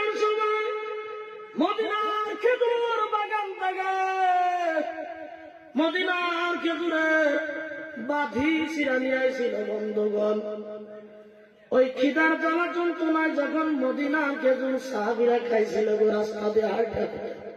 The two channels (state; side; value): identical; both; correlation 1.00